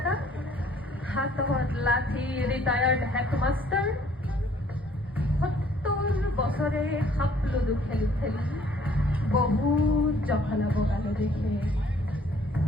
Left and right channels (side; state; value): both; normal; correlation 0.59